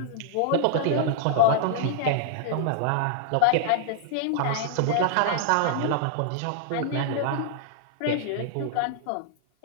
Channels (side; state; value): both; different; correlation -0.01